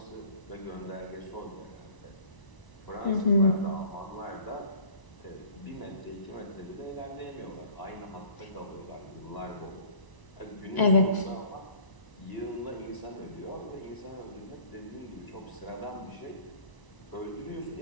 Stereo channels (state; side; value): late; right; 1.0 ms